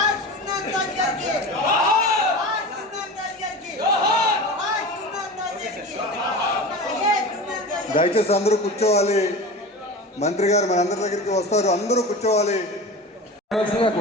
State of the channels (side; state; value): both; normal; correlation 0.32